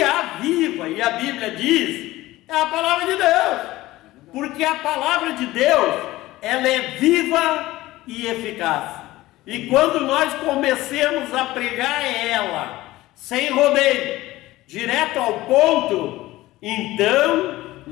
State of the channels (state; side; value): quieter; right; 17.5 dB